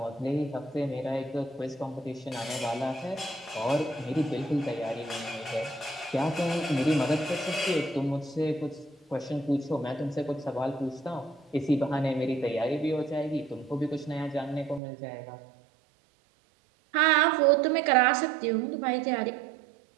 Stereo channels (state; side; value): drops out; left; at 14.8 s